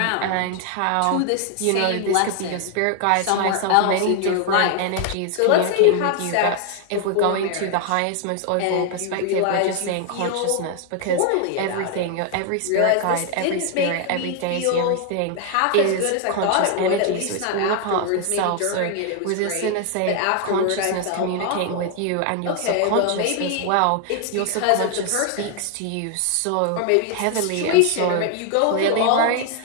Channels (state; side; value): different; both; correlation 0.00